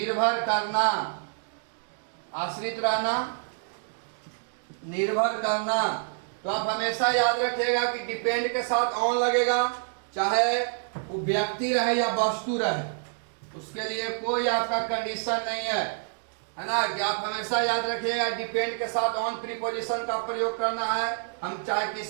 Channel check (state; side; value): silent; left; digital silence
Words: करना, आश्रित रहना, निर्भर करना। तो आप हमेशा याद रखिएगा कि डिपेंड के साथ ऑन लगेगा, चाहे वो व्यक्ति रहे या वस्तु रहे, उसके लिए कोई आपका कंडीशन नहीं है ना। कि आप हमेशा याद रखिएगा डिपेंड के साथ ऑन प्रीपोजिशन का प्रयोग करना है, हम चाहे